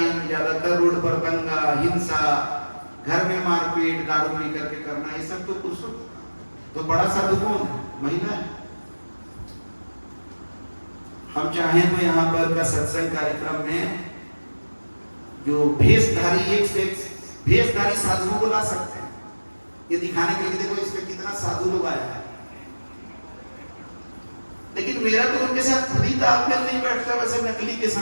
ज्यादातर रोड पर दंगा, हिंसा, घर में मारपीट, दारू पी करके करना, ये सब तो पुरुषों। तो बड़ा साधु कौन है? महिला है। हम चाहें तो यहाँ पर का सत्संग कार्यक्रम में जो भेषधारी, एक से एक भेषधारी साधुओं को ला सकते हैं, ये दिखाने के लिए देखो इसमें कितना साधु लोग आया है। लेकिन मेरा तो उनके साथ खुद ही तालमेल नहीं बैठता, वैसे नकली के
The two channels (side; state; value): both; inverted; correlation -1.00